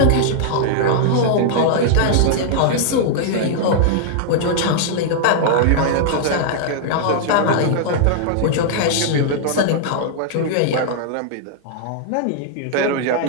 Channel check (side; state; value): both; different; correlation -0.01